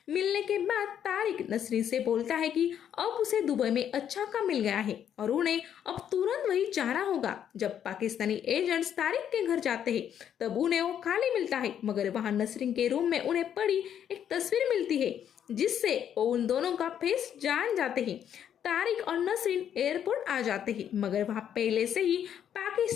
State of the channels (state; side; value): quieter; right; 9.3 dB